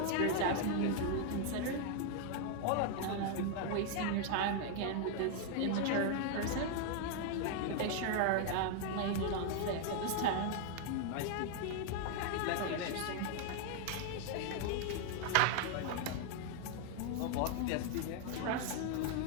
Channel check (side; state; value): both; different; correlation 0.00